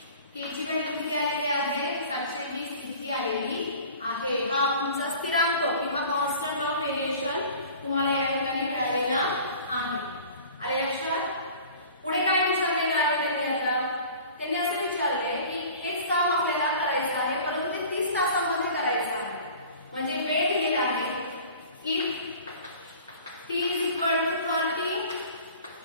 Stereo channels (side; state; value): both; inverted; correlation -0.44